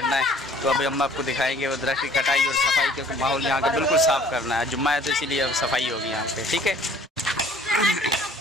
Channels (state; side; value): normal; both; correlation 0.55